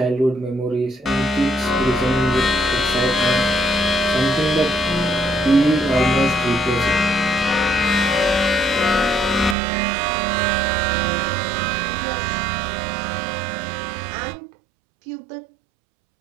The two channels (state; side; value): drops out; left; at 9.6 s